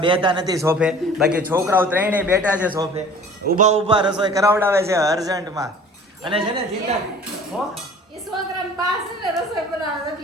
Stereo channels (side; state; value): both; normal; correlation 0.47